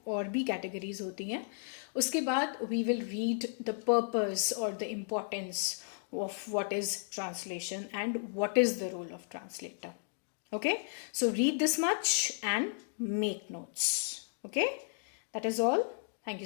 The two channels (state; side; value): silent; right; digital silence